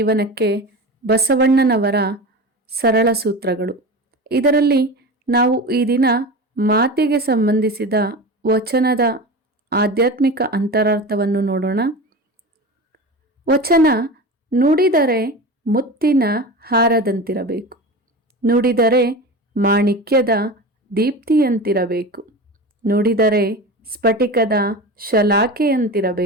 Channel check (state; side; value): normal; both; correlation 0.29